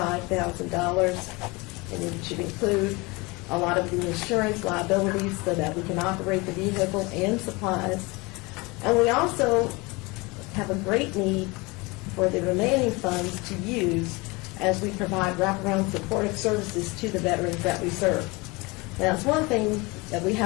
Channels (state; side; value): quieter; right; 25.3 dB